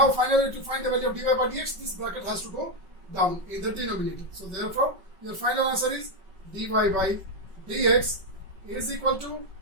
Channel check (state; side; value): late; left; 5.3 ms